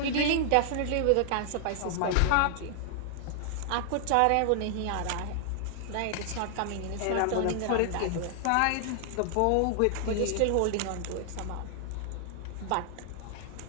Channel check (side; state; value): both; different; correlation 0.00